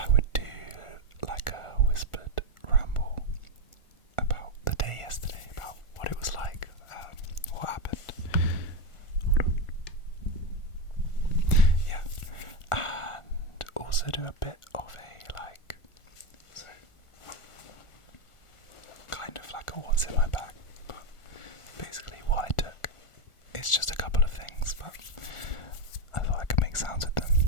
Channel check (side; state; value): right; late; 1.4 ms